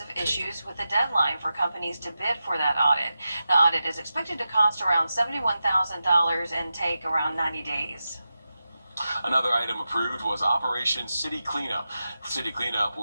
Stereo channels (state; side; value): inverted; both; correlation -0.91